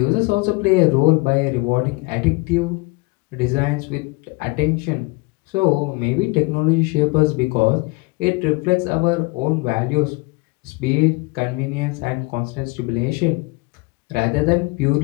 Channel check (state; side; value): quieter; right; 25.9 dB